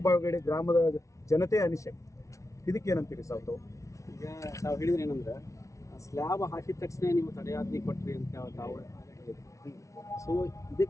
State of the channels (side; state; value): right; late; 0.15 ms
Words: ಗ್ರಾಮದ ಜನತೆ ಅನಿಸಿಕೆ. ಇದಕ್ಕೇನಂತೀರಿ ಸಾವು? ಈಗ ತಾವು ಹೇಳಿದ್ರೆ ಏನಂದ್ರೆ ಸ್ಲ್ಯಾಬ್ ಹಾಕಿದ ತಕ್ಷಣ ನೀವು ತಡೆಯಾಜ್ಞೆ ಕೊಟ್ರಿ ಅಂತ ತಾವು ಹೇಳಿದ್ರಿ. ಸೊ